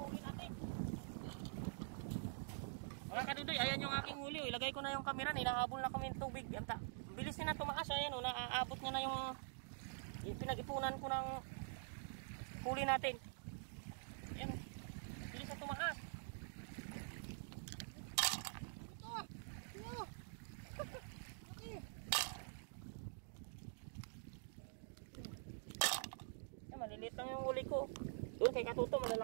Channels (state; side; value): silent; left; digital silence